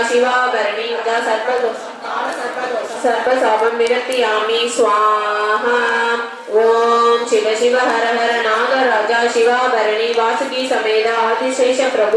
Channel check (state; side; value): identical; both; correlation 1.00